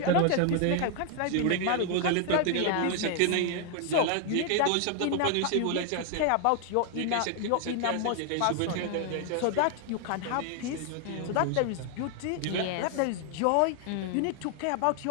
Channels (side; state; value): both; different; correlation 0.00